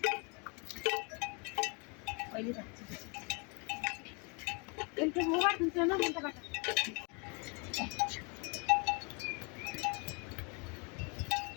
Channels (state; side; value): quieter; right; 33.2 dB